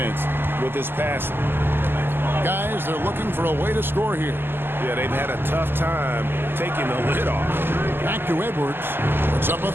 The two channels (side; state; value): left; late; 0.10 ms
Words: with his passing. Guys, they're looking for a way to score here. Yeah, they've had a tough time taking the lid off. Back to Edwards. Puts up a